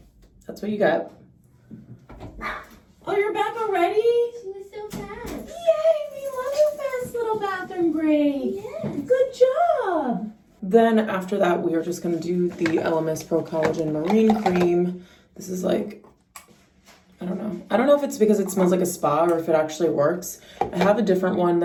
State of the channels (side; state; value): both; identical; correlation 1.00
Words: that's what you get. Oh, you're back already? She was so fast. Yay, we love your fast little bathroom break. Yes. Good job. Then after that, we are just gonna do the Elemis Pro Collagen Marine Cream. This is like, I don't know. I don't know if it's because it smells like a spa or if it actually works. I have a different one